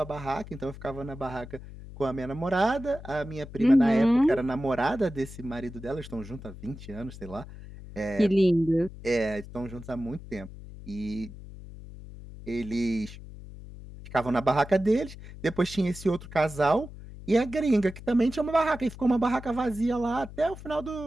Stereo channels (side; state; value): left; noise; hum, 14 dB below the sound